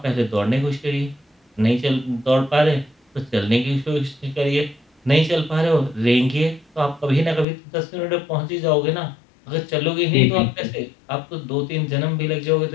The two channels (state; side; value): drops out; right; at 7.5 s